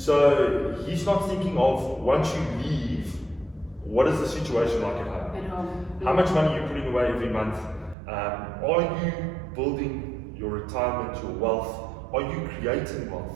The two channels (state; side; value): drops out; left; at 8.0 s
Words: he's not thinking of, once you leave, what is the situation like at home? How much money are you putting away every month? Are you building your retirement, your wealth? Are you creating wealth?